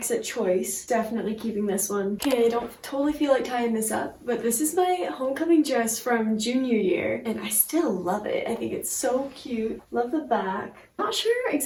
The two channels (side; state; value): both; identical; correlation 1.00